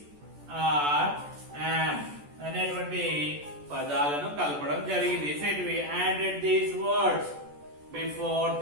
ఆర్, am అనేటువంటి పదాలను కలపడం జరిగింది. So we added these words before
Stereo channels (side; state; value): left; late; 14 ms